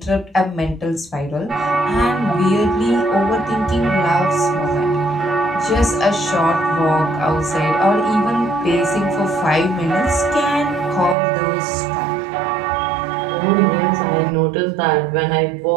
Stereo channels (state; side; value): drops out; left; at 11.2 s